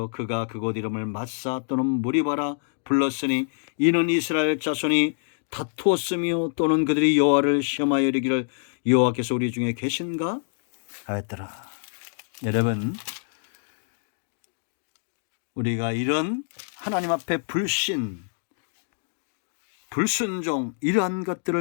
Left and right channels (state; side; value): silent; right; digital silence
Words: 그가 그곳 이름을 마사 또는 무리바라 불렀으니 이는 이스라엘 자손이 다투었으며 또는 그들이 여호와를 시험하여 이르기를 여호와께서 우리 중에 계신가 하였더라. 여러분 우리가 이런 하나님 앞에 불신, 불순종 이러한